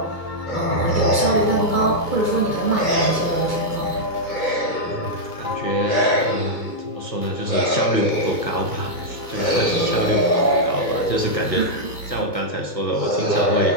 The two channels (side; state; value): right; late; 2.2 ms